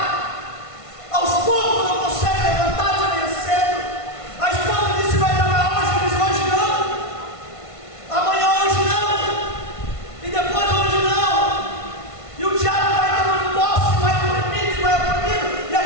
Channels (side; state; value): right; late; 1.5 ms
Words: aos poucos não consegue levantar de manhã cedo. A esposa disse: vai trabalhar hoje, ele diz: hoje não, amanhã hoje não, e depois hoje não. E o diabo vai dando posse, vai oprimindo, e